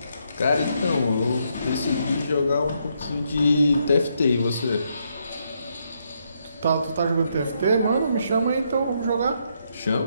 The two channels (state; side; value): inverted; both; correlation -0.76